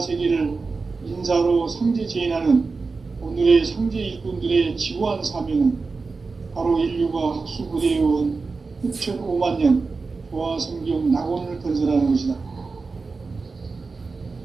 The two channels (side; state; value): left; quieter; 4.2 dB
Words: 인사로 상제 제인하는 오늘의 상제 일꾼들의 지구한 사명은 바로 인류가 학수부대해온 후천 5만 년 조화 성경 낙원을 건설하는 것이다.